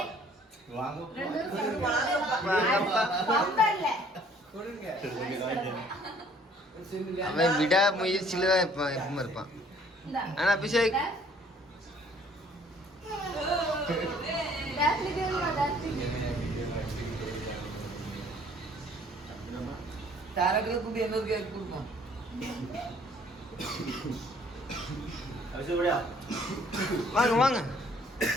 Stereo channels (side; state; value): both; normal; correlation 0.58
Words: அவன் விடா முயற்சியில தான் எப்பவும் இருப்பான். இந்தா. ஆனா அபிஷேக் Daphne கேளுமா, Daphne. தாரகளை கூப்பிட்டு இன்னொரு கேக் கொடுப்போம். வாங்க வாங்க